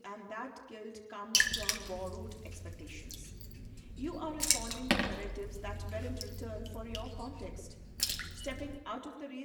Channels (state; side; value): identical; both; correlation 1.00